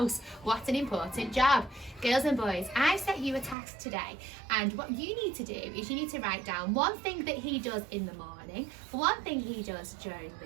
What an important job. Girls and boys, I've set you a task today, and what you need to do is you need to write down one thing that he does in the morning, one thing he does during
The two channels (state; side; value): drops out; left; at 3.6 s